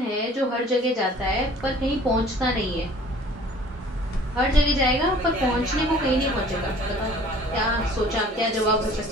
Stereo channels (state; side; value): normal; both; correlation 0.51